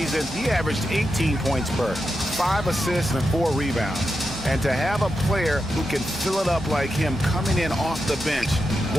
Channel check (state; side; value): normal; both; correlation 0.87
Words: he averaged 18 points per, 5 assists and 4 rebounds. And to have a player who can fill it up like him coming in off the bench,